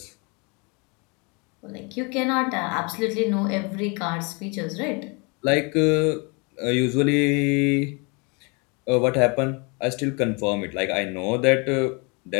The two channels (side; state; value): right; quieter; 31.2 dB